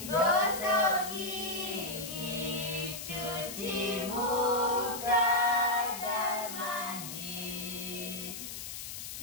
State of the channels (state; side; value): noise; left; hiss, 8 dB below the sound